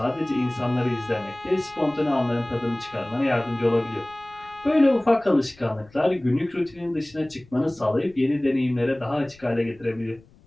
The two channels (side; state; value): left; noise; rumble, 27 dB below the sound